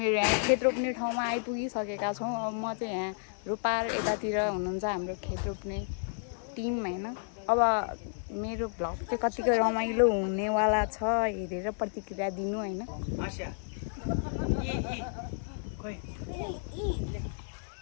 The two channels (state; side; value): silent; right; digital silence